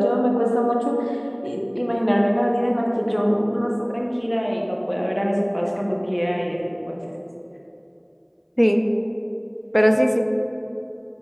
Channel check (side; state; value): both; identical; correlation 1.00